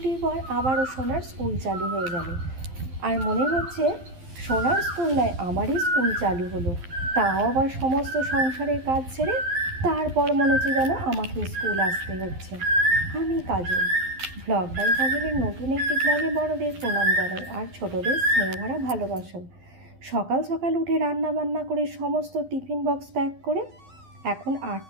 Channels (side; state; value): left; late; 12 ms